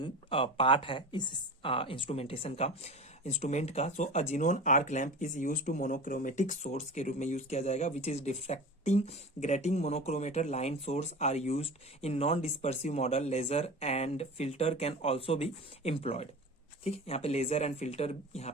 part है इस इंस्ट्रूमेंटेशन का, इंस्ट्रूमेंट का। So a xenon arc lamp is use to monochromatic source के रूप में यूज किया जाएगा, which is diffracting grating monochromator line source are used in non dispersive model. Laser and filter can also be employed. ठीक है, यहाँ पे laser and filter यहाँ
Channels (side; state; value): both; normal; correlation 0.33